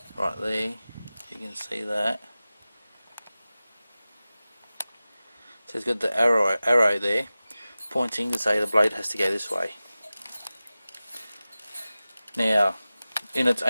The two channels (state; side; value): inverted; both; correlation -0.96